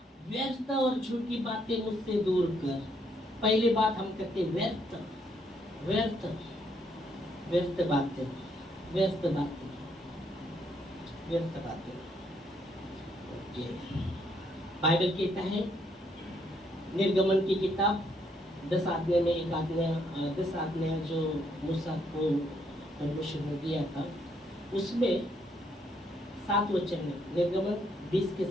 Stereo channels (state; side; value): normal; both; correlation 0.72